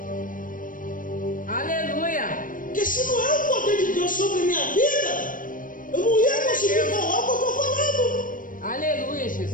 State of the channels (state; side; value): late; right; 0.39 ms